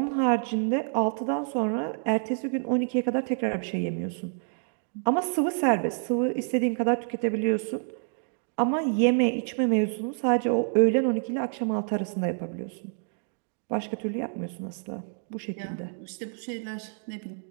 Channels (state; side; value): silent; left; digital silence